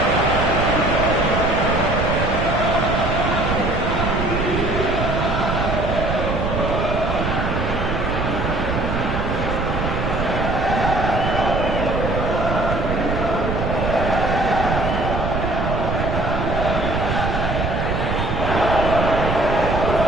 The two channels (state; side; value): noise; right; rumble, 2 dB below the sound